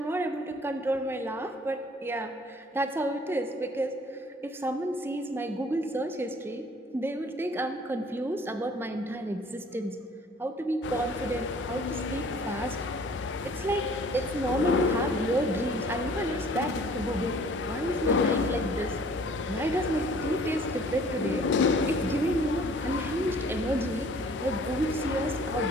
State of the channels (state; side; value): normal; both; correlation 0.53